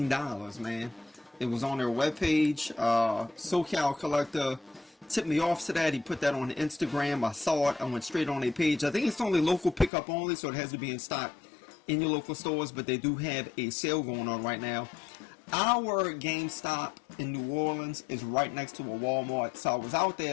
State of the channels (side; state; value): right; drops out; at 9.9 s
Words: man. It was on their webpage. SoCal Collector tipped me off to that. He put that on Instagram. I saw it. I went straight on their page. I think it's only local pickup only, so it has to be in stock in your local stores, but they do have a sale going on right now. Our GameStop in New Orleans is right next to a Walmart, so I was out